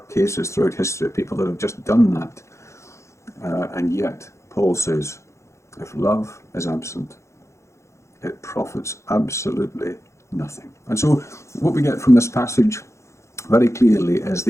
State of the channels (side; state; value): right; late; 0.14 ms